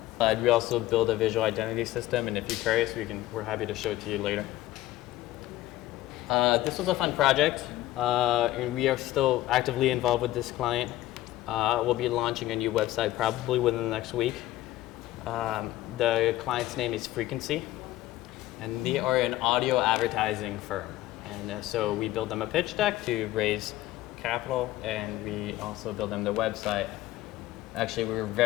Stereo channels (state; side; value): quieter; right; 15.5 dB